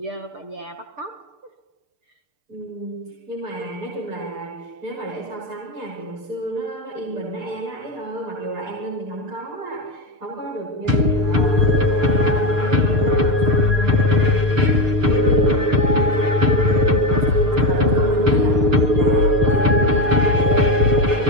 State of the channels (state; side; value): late; left; 6.7 ms